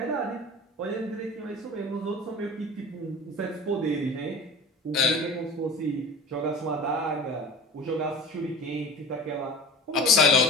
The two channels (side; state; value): both; normal; correlation 0.37